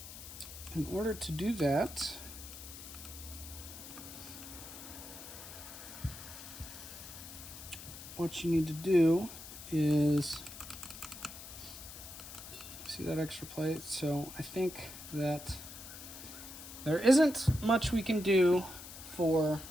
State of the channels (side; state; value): left; noise; hiss, 13 dB below the sound